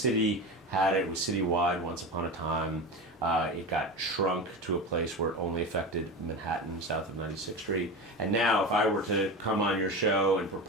had it. It was citywide once upon a time. It got shrunk to a place where it only affected Manhattan, south of 96th Street. And now, if I were to come on your show and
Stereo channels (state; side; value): normal; both; correlation 0.25